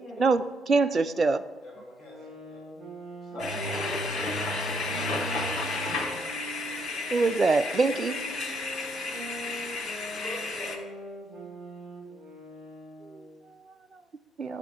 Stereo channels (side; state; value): both; normal; correlation 0.73